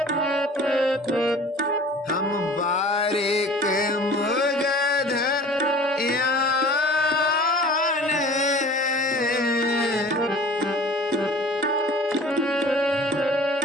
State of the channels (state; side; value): normal; both; correlation 0.45